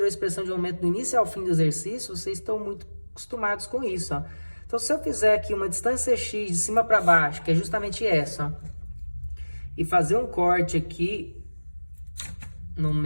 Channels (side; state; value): both; inverted; correlation -1.00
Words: a expressão de momento do início ao fim do exercício, vocês estão muito acostumados com isso, ó. Então, se eu fizer aqui uma distância x de cima para baixo, que é justamente essa, ó, e fazer um corte aqui no